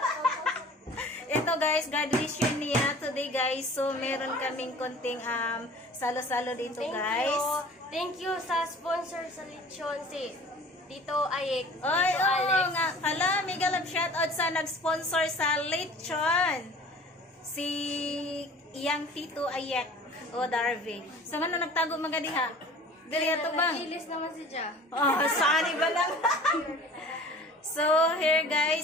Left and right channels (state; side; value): normal; both; correlation 0.45